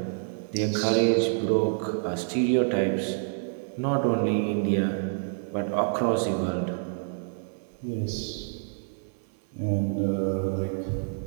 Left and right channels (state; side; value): silent; left; 60 dB below the other